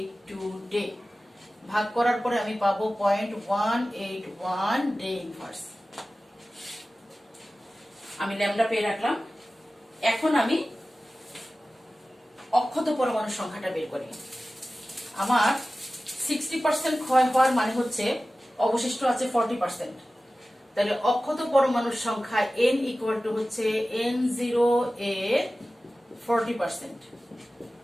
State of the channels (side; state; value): both; normal; correlation 0.96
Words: day ভাগ করার পরে আমি পাবো 0.181 ডে ইনভার্স। আমি ল্যামডা পেয়ে রাখলাম। এখন আমি অক্ষত পরমাণুর সংখ্যাটা বের করি। আমার 60% ক্ষয় হওয়ার মানে হচ্ছে অবশিষ্ট আছে 40%, তাহলে অক্ষত পরমাণুর সংখ্যা n ইকুয়াল টু হচ্ছে n0 এর 40%।